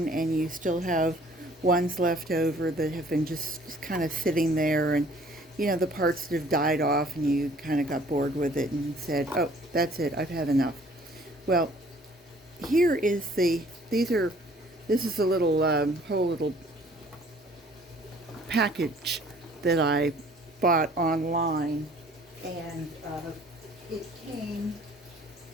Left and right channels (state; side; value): normal; both; correlation 0.55